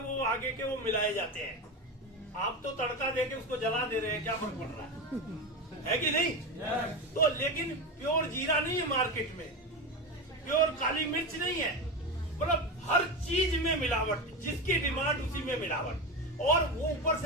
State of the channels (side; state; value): both; normal; correlation 0.19